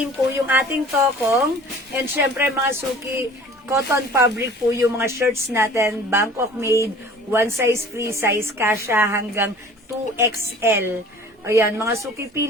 po yung ating tokong. And syempre, mga suki, cotton fabric po yung mga shirts natin. Bangkok made, one size, free size, kasha hanggang 2XL. Ayan, mga suki,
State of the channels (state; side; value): normal; both; correlation 0.47